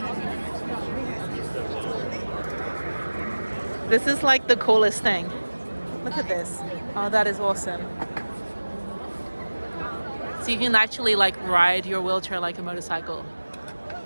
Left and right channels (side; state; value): both; inverted; correlation -1.00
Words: This is like the coolest thing. Look at this. Oh, that is awesome. So you can actually like ride your wheelchair like a motorcycle.